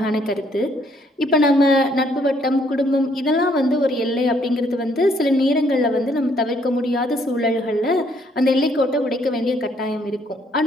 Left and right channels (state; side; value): normal; both; correlation 0.67